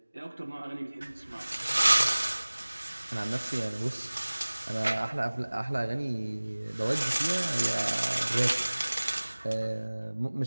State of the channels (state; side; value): inverted; both; correlation -1.00